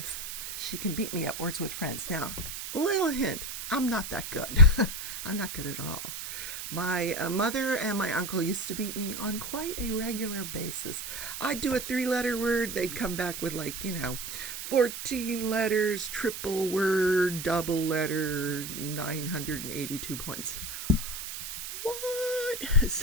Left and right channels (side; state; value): right; noise; hiss, 7 dB below the sound